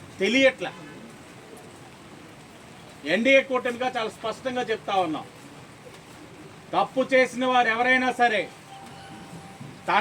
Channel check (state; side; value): identical; both; correlation 1.00